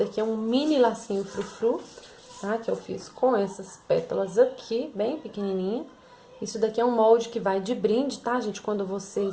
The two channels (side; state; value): both; identical; correlation 1.00